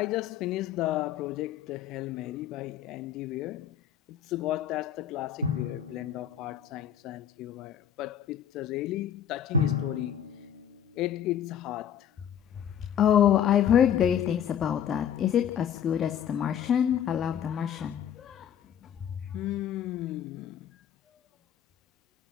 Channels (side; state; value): right; quieter; 9.4 dB